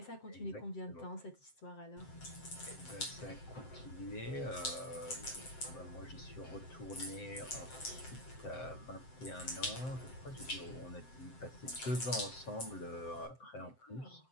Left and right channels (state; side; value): late; right; 7.7 ms